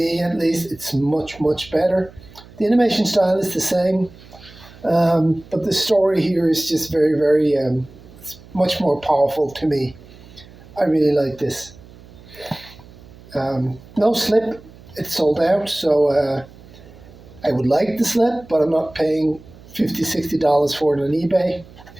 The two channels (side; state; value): right; noise; hum, 21 dB below the sound